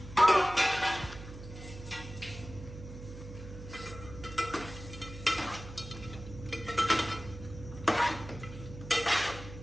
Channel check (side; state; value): right; noise; hum, 13 dB below the sound